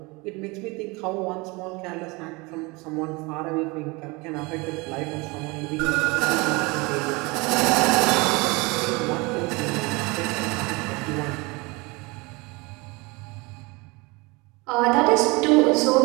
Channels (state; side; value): quieter; left; 25.8 dB